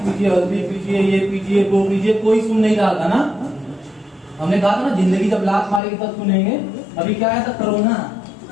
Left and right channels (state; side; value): drops out; right; at 5.8 s